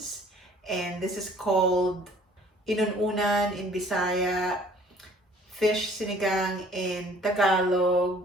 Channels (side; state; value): both; normal; correlation 0.55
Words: And this is called inununan in Bisaya, fish sinigang in Tagalog,